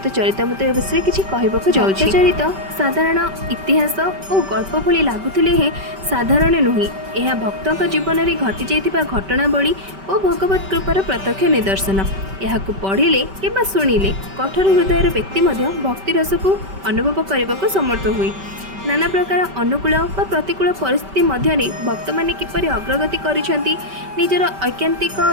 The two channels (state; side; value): late; left; 5.2 ms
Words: चरितमृत विषय किछि कहबाकू जाउछि। चरित साधारण इतिहास और गल्प भली लागुथिले हे साधारण नुही। यह भक्तों जीवन में घटी जाइथिबा घटनावली और भगवत कृपार प्रत्यक्ष निदर्शन। यह पढ़िले कि शुणिले कठोर हृदय व्यक्ति भक्ति रस को अनुभव करने को समर्थ हुए। नाना प्रकार अनुकूल व प्रतिकूल परिस्थिति मध्य भक्त मैंने किपरि अग्रगति करिसेंती, निजर ऐकांतिक